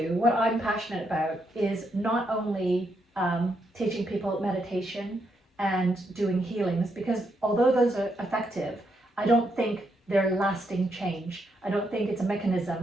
what I'm passionate about, is not only teaching people meditation and doing healings, because although those are effective, I don't think they're lasting change. I don't think it's a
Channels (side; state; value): both; normal; correlation 0.79